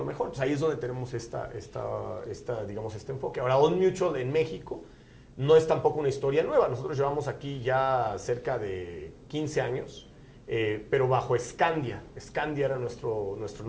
mejor. Entonces ahí es donde tenemos digamos, este enfoque. Ahora, Old Mutual en México no es tampoco una historia nueva. Nosotros llevamos aquí ya cerca de 15 años. Pero bajo Scandia. Scandia era nuestro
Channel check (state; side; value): identical; both; correlation 1.00